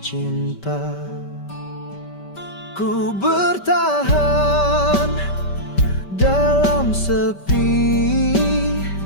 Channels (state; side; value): late; right; 5.2 ms